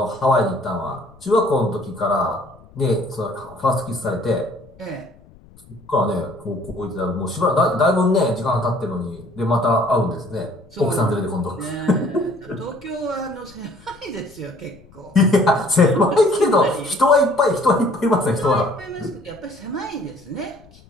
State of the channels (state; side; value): noise; left; rumble, 25 dB below the sound